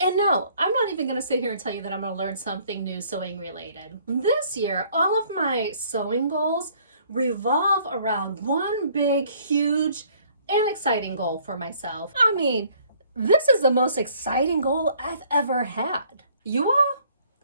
no, I'm not even gonna sit here and tell you that I'm gonna learn something new sewing related. This year, all of my sewing goals revolve around one big, huge, and exciting goal for myself. I mean, this is the most exciting goal I've ever had. You all?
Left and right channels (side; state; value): both; inverted; correlation -0.60